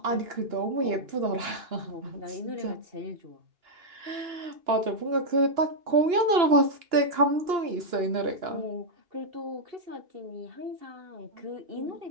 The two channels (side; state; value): left; late; 2.9 ms